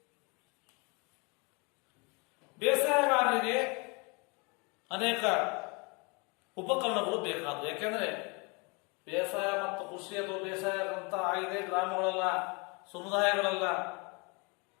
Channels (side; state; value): right; quieter; 30.2 dB